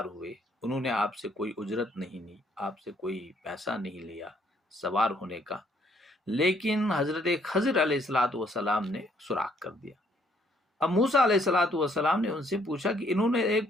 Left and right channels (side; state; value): both; normal; correlation 0.67